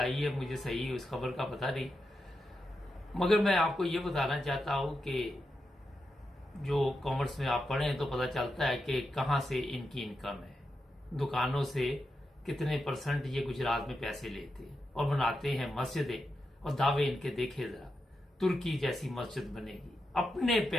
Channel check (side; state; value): both; normal; correlation 0.87